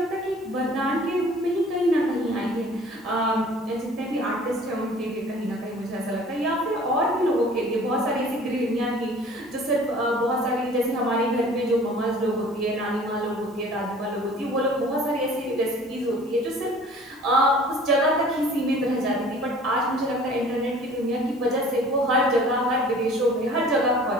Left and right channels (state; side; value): normal; both; correlation 0.49